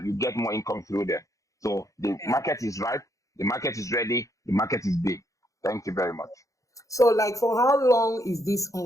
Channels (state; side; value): late; right; 0.16 ms